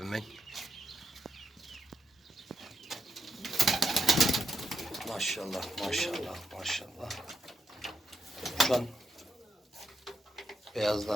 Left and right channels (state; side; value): normal; both; correlation 0.81